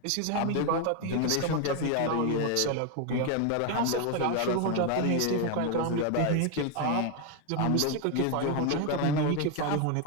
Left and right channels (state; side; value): different; both; correlation 0.01